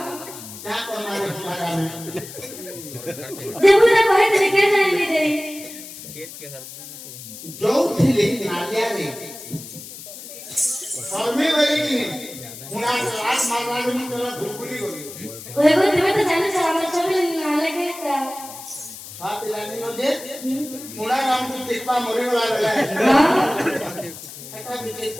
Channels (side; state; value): left; noise; hiss, 13 dB below the sound